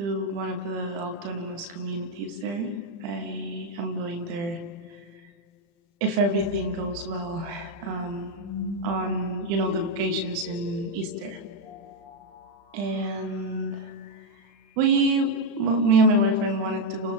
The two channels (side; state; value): left; late; 35 ms